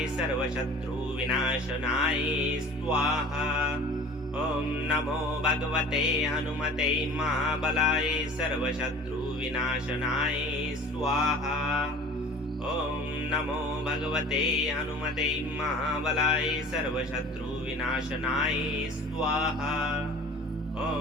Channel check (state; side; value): normal; both; correlation 0.43